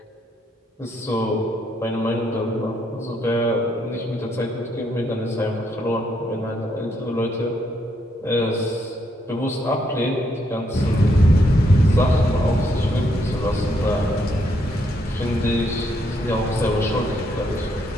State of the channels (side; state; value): both; normal; correlation 0.75